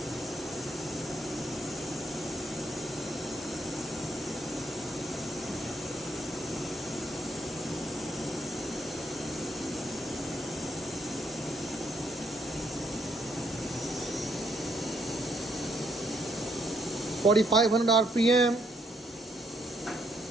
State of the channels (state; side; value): normal; both; correlation 0.72